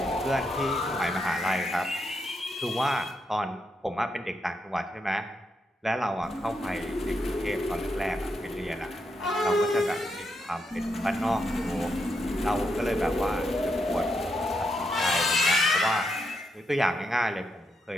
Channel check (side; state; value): both; normal; correlation 0.81